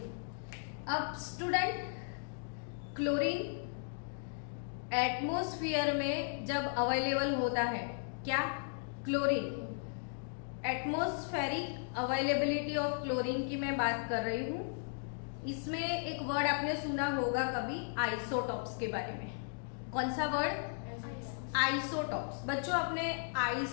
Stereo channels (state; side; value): silent; right; digital silence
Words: अब स्टूडेंट, क्लोरीन एटमॉस्फेयर में जब अवेलेबल होता है, क्या chlorine, atmospheric availability of chlorine की मैं बात कर रही हूं। इसमें एक वर्ड आपने सुना होगा कभी आइसोटॉप्स के बारे में। कौन सा वर्ड? आइसोटॉप्स। बच्चों आपने